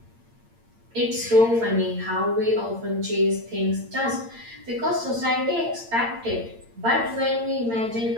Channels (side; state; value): left; late; 8.8 ms